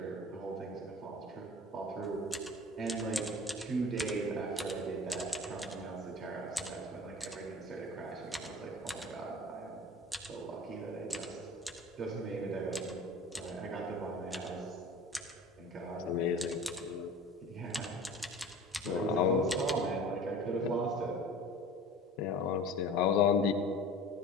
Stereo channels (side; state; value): both; normal; correlation 0.39